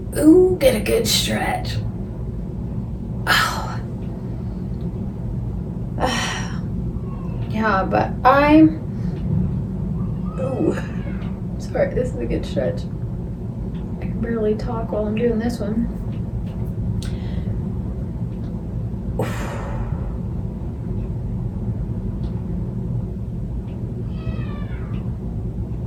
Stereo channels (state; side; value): identical; both; correlation 1.00